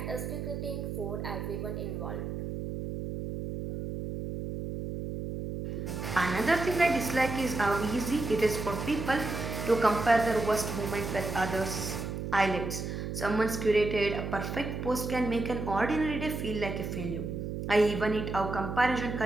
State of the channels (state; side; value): noise; right; hum, 5 dB below the sound